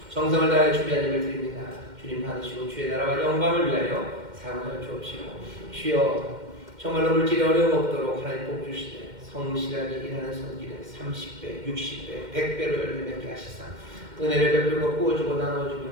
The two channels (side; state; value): left; late; 2.1 ms